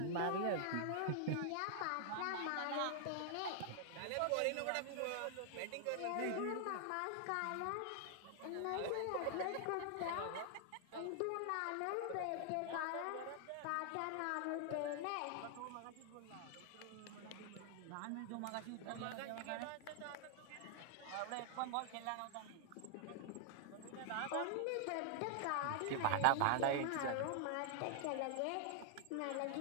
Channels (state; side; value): different; both; correlation 0.00